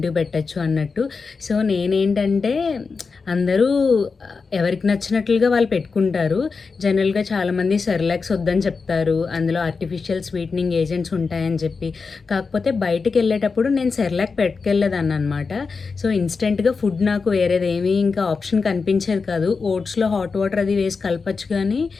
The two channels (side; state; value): right; quieter; 4.8 dB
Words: పెట్టచ్చు అన్నట్టు. సో నేనేంటంటే అందరూ ఎవరికి నచ్చినట్లుగా వాళ్ళు పెట్టుకుంటారు. జనరల్గా చాలామంది సెర్లాక్స్ వద్దని చెప్తారు, అందులో ఆర్టిఫిషియల్ స్వీటనింగ్ ఏజెంట్స్ ఉంటాయని చెప్పి. కాకపోతే బయటికి వెళ్ళేటప్పుడు నేను సెర్లాక్ పెట్టుకెళ్ళేదాన్ని అనమాట. సో ఇన్స్టెంట్గా ఫుడ్ నాకు వేరేది ఏమీ ఇంకా ఆప్షన్ కనిపించేది కాదు. ఓట్స్లో హాట్ వాటర్ అది వేసి కలపచ్చు, కానీ